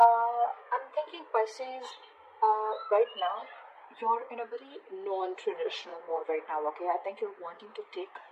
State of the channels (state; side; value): identical; both; correlation 1.00